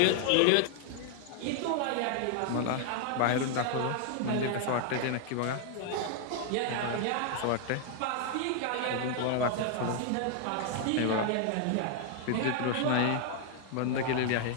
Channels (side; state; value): both; different; correlation 0.00